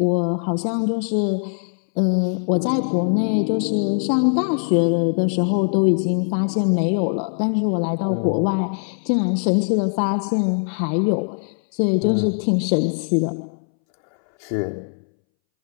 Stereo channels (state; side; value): silent; right; 64 dB below the other